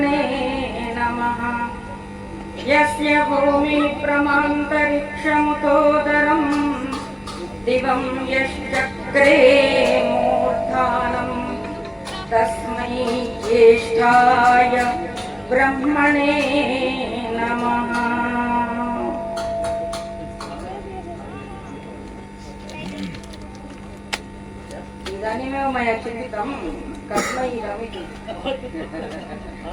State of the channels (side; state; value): both; identical; correlation 1.00